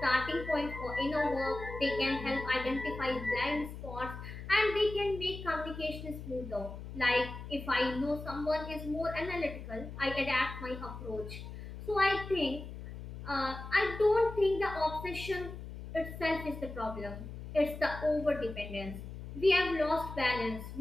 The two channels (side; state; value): left; noise; hum, 10 dB below the sound